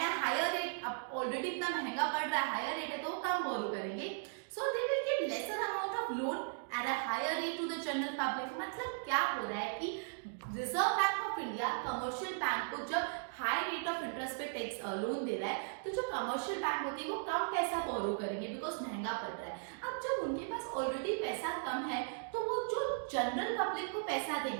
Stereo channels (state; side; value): silent; left; digital silence